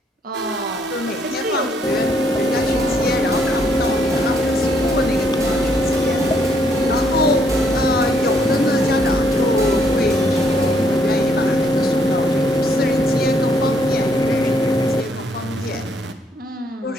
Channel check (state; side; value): normal; both; correlation 0.70